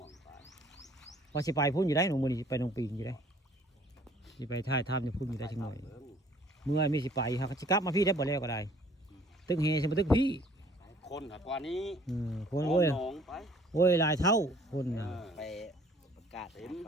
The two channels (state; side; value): normal; both; correlation 0.56